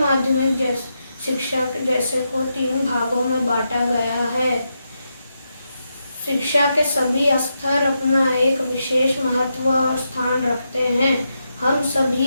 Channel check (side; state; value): both; inverted; correlation -0.85